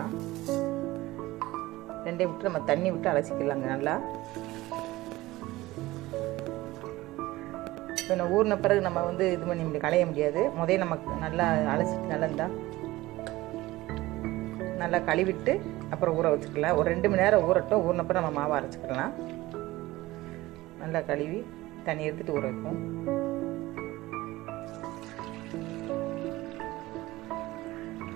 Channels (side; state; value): left; quieter; 18.4 dB